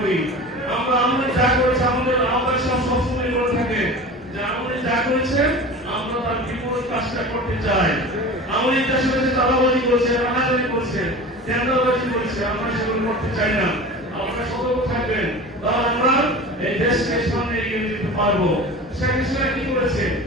আমরা যা করেছে আমাদের আহ্বায়ক সবসময় বলে থাকে যে আমাদের যা করেছে আমরা তার বিপরীত কাজটা করতে চাই। আমাদের দেশের কাছে চাঁদাবাজি করেছে, রানাবাজি করেছে, টেন্ডারবাজি করেছে, আমরা সেগুলো করতে চাই না। আপনারা সতর্ক থাকবেন, তাহলে আমরা এই দেশকে সামনে এগিয়ে যেতে পারবো। শেখ হাসিনা কি করেছে?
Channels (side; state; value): both; normal; correlation 0.35